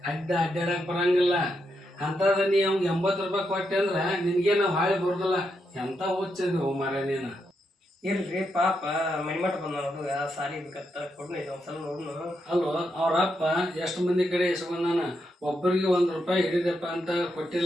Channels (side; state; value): both; normal; correlation 0.82